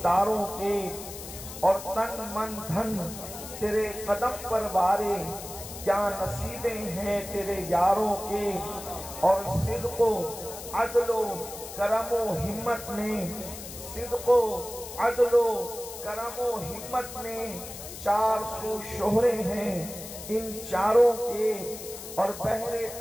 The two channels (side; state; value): left; noise; hiss, 11 dB below the sound